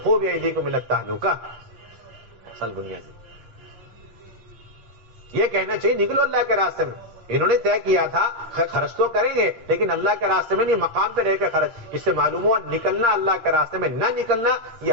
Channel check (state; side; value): late; left; 8.6 ms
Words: بأیدیکم الی التہلکہ. اصل بنیادی یہ کہنا چاہیے نکلو اللہ کے راستے میں. انہوں نے طے کیا تھا خرچ تو کریں گے لیکن اللہ کے راستے میں نہیں, مقام پہ رہ کے خرچ. اس سے معلوم ہوا نکلنا اللہ کے راستے میں نہ نکلنا یہ